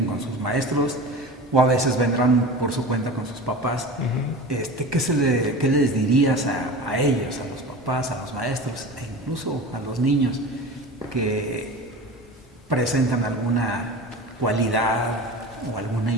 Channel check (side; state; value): both; normal; correlation 0.33